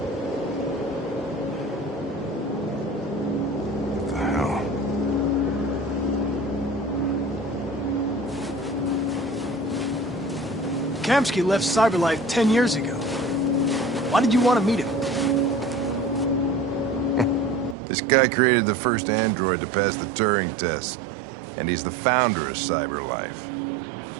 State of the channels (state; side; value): drops out; left; at 17.8 s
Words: What the hell? Kamsky left Cyberlife 10 years ago. Why did you want to meet him? This guy created the first android to pass the Turing test, and he's the founder of Cyberlife.